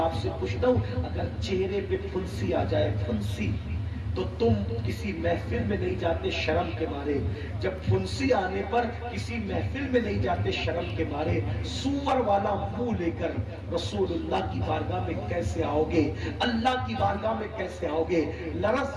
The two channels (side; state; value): both; identical; correlation 1.00